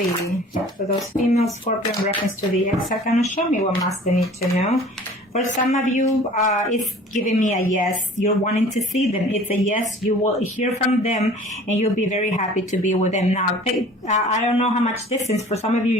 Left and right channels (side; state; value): both; normal; correlation 0.47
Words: For those female Scorpio in reference to the ex, can show me what must they need to know. For some of you, it's giving me a yes. You're wanting to see them. It's a yes. You will hear from them, and you'll be very happy to be with them. Now, I don't know how much distance. For some of you,